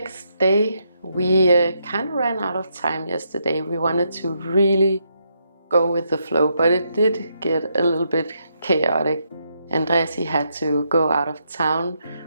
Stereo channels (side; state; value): both; inverted; correlation -0.78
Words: day. We kind of ran out of time yesterday. We wanted to really go with the flow, but it did get a little bit chaotic. Andreas, he had to go out of town